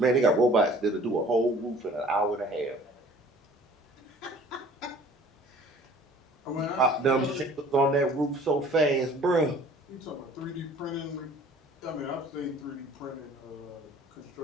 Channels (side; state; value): both; normal; correlation 0.50